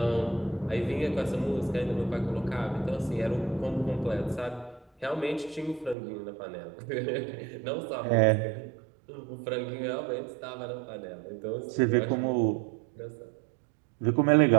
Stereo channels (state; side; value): drops out; left; at 6.0 s